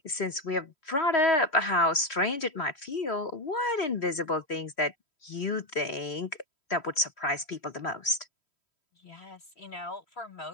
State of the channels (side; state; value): right; late; 3.1 ms